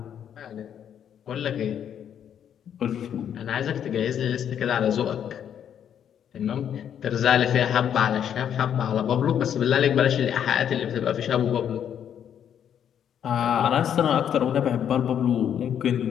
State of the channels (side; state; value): right; quieter; 9.1 dB